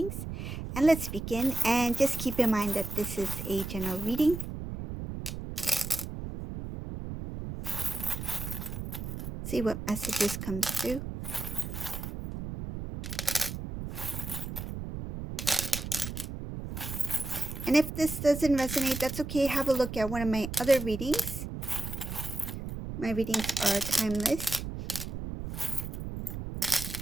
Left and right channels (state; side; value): noise; right; rumble, 7 dB below the sound